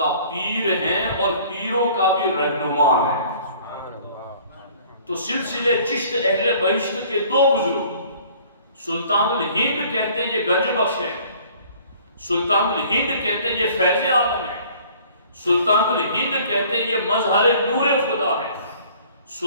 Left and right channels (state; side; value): inverted; both; correlation -0.53